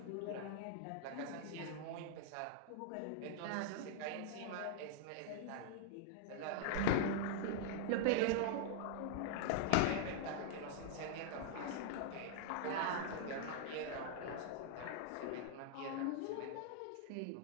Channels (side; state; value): both; different; correlation -0.01